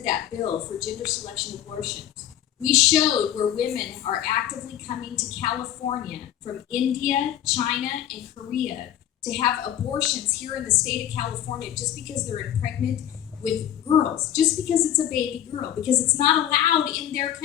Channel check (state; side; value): quieter; right; 11.2 dB